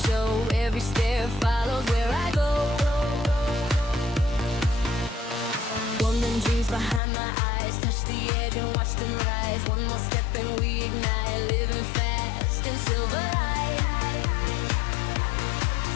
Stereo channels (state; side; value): drops out; right; at 7.0 s